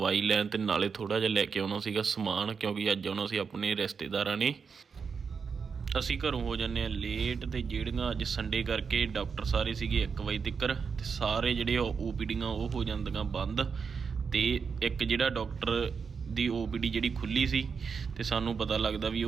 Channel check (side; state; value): left; quieter; 5.8 dB